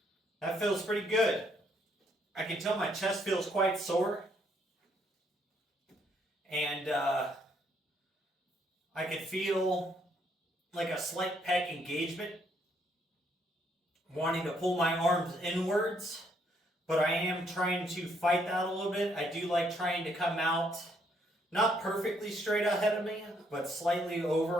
That feels pretty good. I can tell my chest feels quite sore. And I can feel like a slight pec engagement, wanting to pull my arms inwards. But I am trying to fight that a little bit. I do like trying to come out, not perfectly straight ahead of me, but slightly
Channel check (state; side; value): normal; both; correlation 0.70